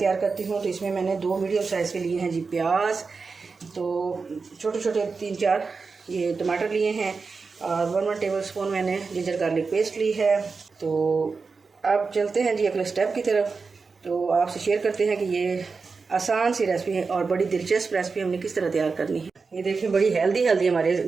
करती हूँ। तो इसमें मैंने 2 मीडियम साइज़ के लिए हैं जी प्याज, तो छोटे छोटे 3-4 ये टमाटर लिए हैं और 1 टेबल स्पून मैंने जिंजर गार्लिक पेस्ट ली है। तो अब चलते हैं जी अगले स्टेप की तरफ। तो आपसे शेयर करते हैं कि ये आसान सी रेसिपी है और बड़ी दिलचस्प रेसिपी हमने किस तरह तैयार करनी है। ये देखिए बड़ी हेल्दी हमारे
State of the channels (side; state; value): left; quieter; 4.6 dB